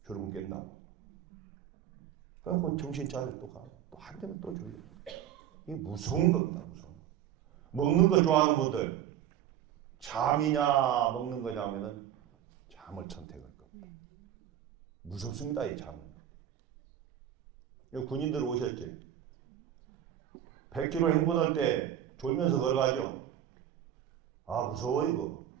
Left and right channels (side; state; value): left; quieter; 10.8 dB